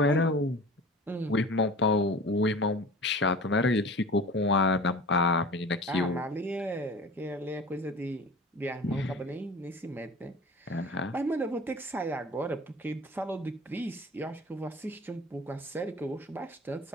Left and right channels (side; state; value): both; normal; correlation 0.38